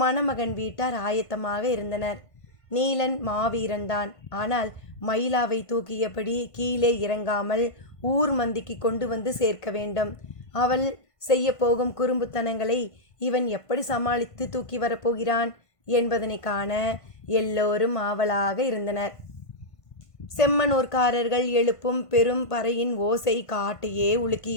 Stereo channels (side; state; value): right; late; 1.5 ms